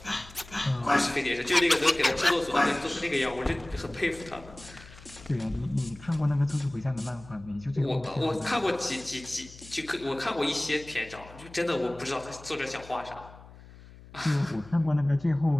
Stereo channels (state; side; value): noise; left; hum, 20 dB below the sound